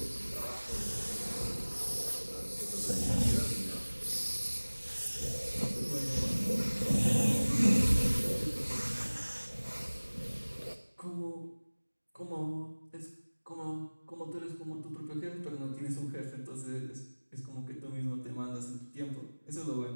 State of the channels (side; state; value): both; inverted; correlation -1.00